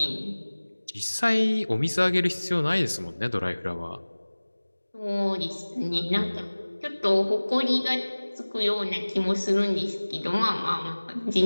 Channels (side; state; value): both; inverted; correlation -1.00